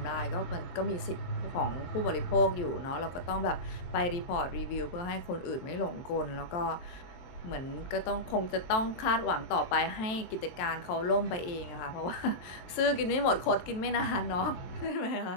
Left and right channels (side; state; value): right; late; 23 ms